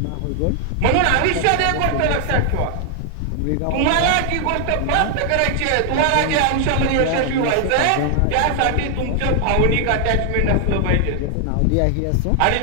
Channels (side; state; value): both; different; correlation 0.00